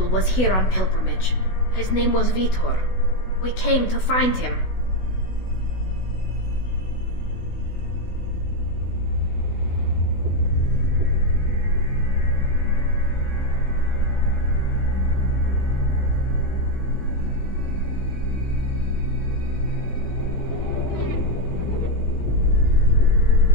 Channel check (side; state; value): right; late; 16 ms